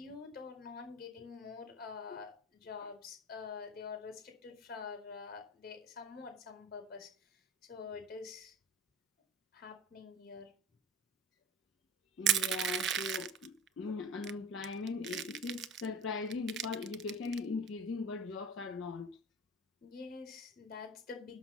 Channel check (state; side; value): normal; both; correlation 0.37